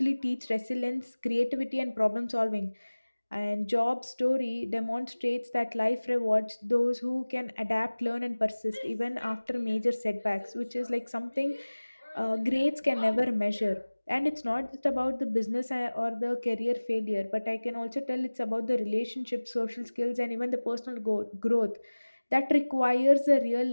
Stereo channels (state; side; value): inverted; both; correlation -1.00